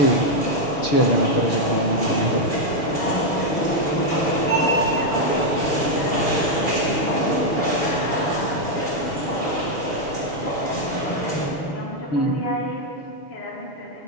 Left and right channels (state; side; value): late; right; 6.6 ms